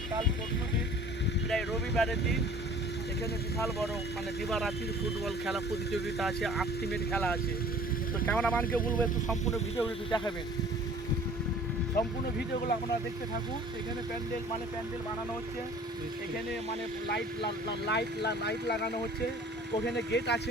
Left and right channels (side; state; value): both; normal; correlation 0.48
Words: পরশু দিন প্রায় রবিবারের দিন এখানে বিশাল বড় দিবারাত্রির ফুটবল খেলা প্রতিযোগিতা আছে। 8 টিমের খেলা আছে। তো ক্যামেরাম্যানকে বলবো একটু সম্পূর্ণ ভিডিওগুলো একটু দেখাবেন। সম্পূর্ণ ভিডিওগুলো আপনারা দেখতে থাকুন। এখানে প্যান্ডেল বানানো হচ্ছে। এখানে লাইট লাগানো হচ্ছে। ওখানে গেট আছে।